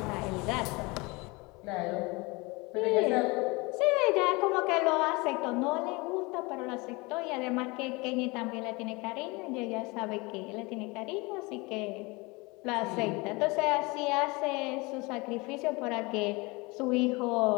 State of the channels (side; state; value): right; quieter; 25.5 dB